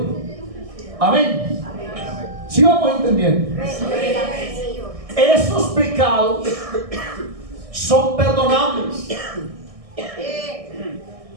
Amén. ¿Sí vamos entendiendo? Esos pecados son perdonables.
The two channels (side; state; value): left; late; 1.6 ms